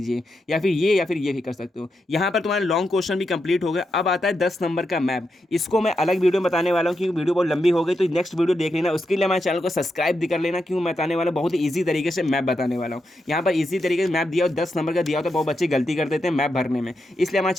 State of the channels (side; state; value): both; normal; correlation 0.85